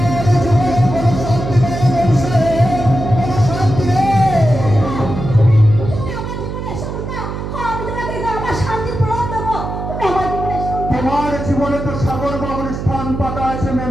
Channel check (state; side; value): noise; right; hum, 6 dB below the sound